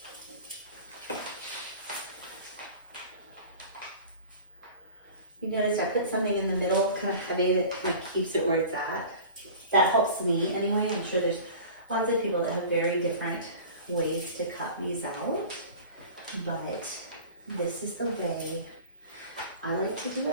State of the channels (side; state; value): both; inverted; correlation -0.40